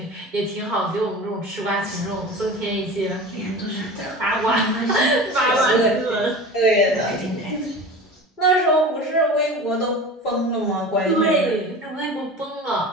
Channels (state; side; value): normal; both; correlation 0.34